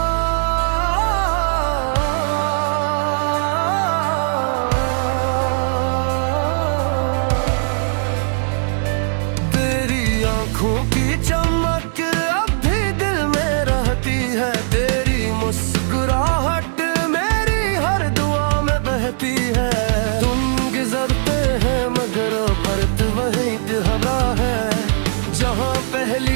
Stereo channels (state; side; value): silent; left; 56 dB below the other